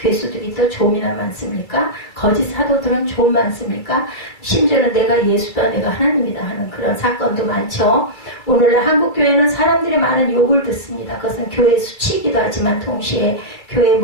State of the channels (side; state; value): right; late; 2.3 ms